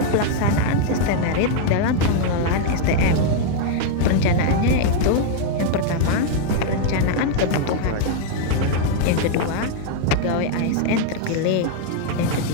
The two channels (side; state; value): both; different; correlation 0.00